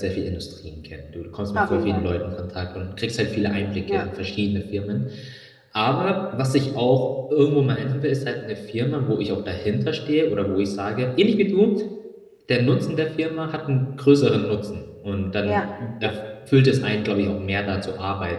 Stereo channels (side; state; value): both; identical; correlation 1.00